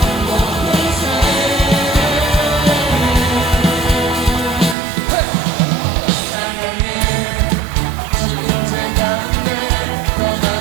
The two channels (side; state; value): left; drops out; at 4.8 s